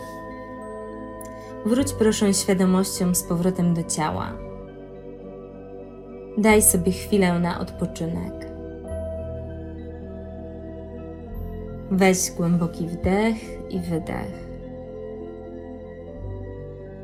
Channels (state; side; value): identical; both; correlation 1.00